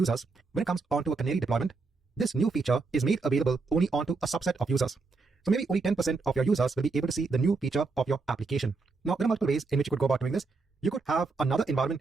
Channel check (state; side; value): quieter; left; 4.1 dB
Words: when it comes onto a canary deployment, this new feature is made available only onto a subset of users. So maybe only 10% of your users will be able to see the new feature of your application. Now, there are multiple ways in which you could go about doing this. You could have another environment